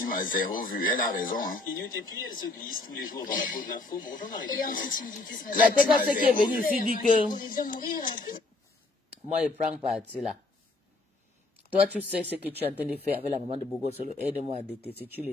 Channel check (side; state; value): right; quieter; 3.1 dB